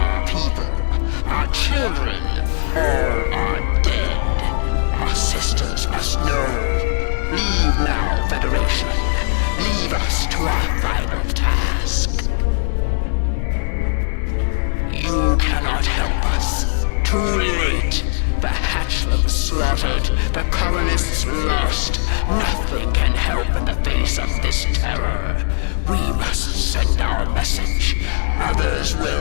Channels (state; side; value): silent; right; 66 dB below the other